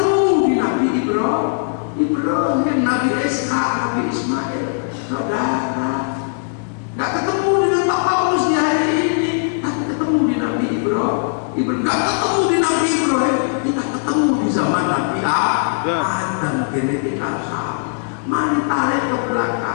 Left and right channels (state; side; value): silent; right; digital silence